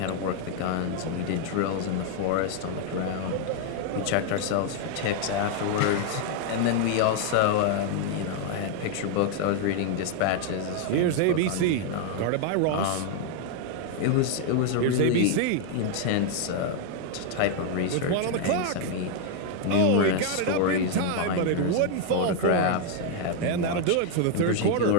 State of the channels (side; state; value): both; different; correlation 0.00